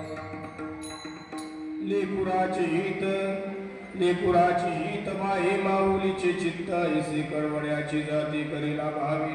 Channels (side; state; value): both; identical; correlation 1.00